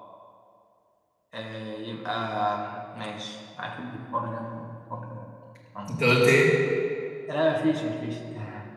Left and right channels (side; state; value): both; identical; correlation 1.00